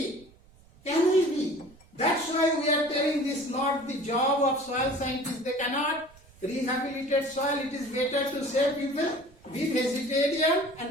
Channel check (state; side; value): noise; right; rumble, 26 dB below the sound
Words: That's why we are telling this not the job of soil scientists. They cannot rehabilitate soil. It is better to say people, be vegetarian